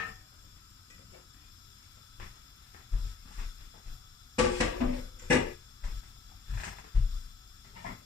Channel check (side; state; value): right; quieter; 4.9 dB